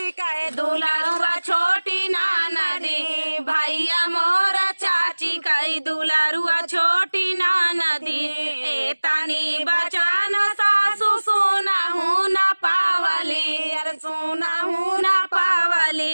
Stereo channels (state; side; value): inverted; both; correlation -1.00